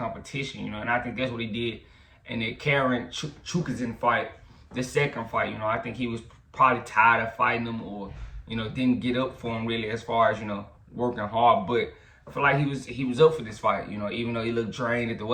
and I think that's what he did in the Jaron Chukazin fight, the second fight. I think he was probably tired of fighting him, or, didn't get up for him really as far as, working hard. But I feel like he was up for this fight, even though he looked drained at the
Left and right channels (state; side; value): identical; both; correlation 1.00